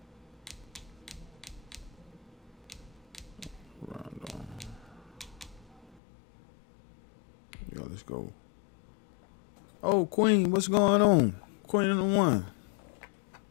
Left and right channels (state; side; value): drops out; right; at 6.0 s